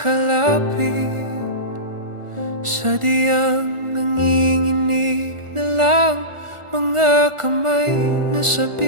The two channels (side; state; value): left; late; 1.4 ms